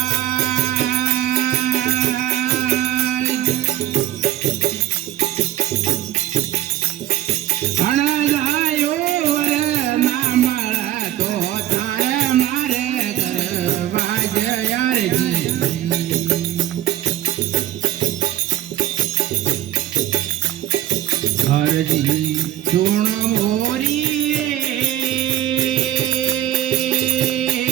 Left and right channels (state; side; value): quieter; left; 13.3 dB